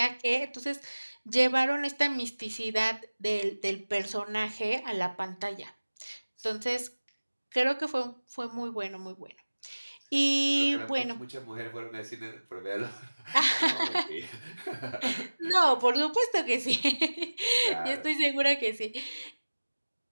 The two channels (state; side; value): inverted; both; correlation -1.00